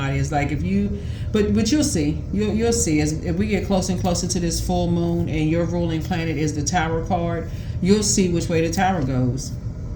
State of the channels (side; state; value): both; identical; correlation 1.00